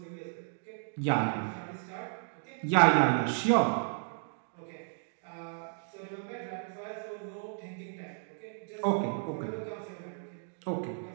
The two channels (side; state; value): left; silent; digital silence